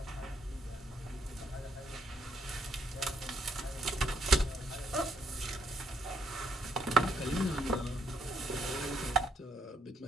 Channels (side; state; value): both; normal; correlation 0.74